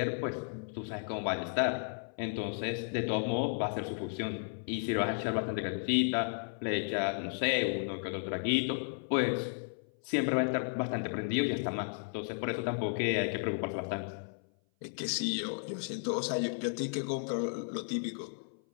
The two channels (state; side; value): silent; right; 55 dB below the other